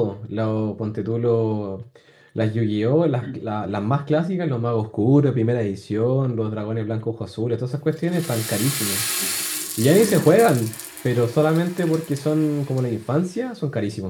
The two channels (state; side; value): identical; both; correlation 1.00